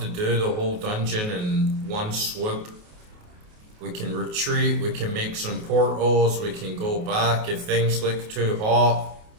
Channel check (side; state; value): left; late; 28 ms